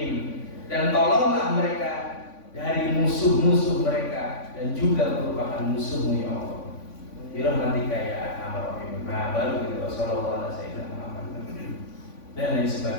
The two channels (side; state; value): right; late; 3.5 ms